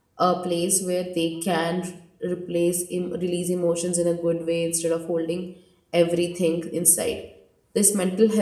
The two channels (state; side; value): identical; both; correlation 1.00